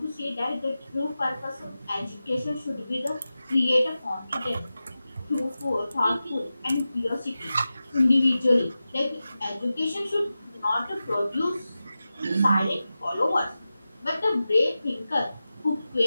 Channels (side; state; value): both; inverted; correlation -0.94